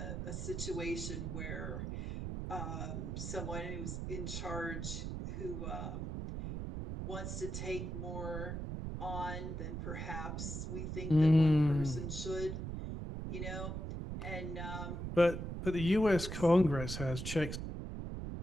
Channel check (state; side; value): noise; right; rumble, 4 dB below the sound